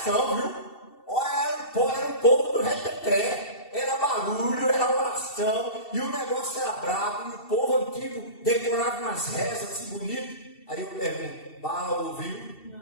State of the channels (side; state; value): right; late; 2.7 ms